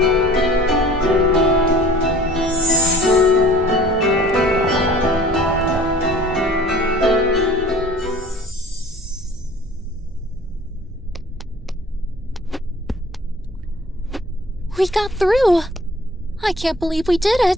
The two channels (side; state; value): both; normal; correlation 0.48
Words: We got through. I can't believe we did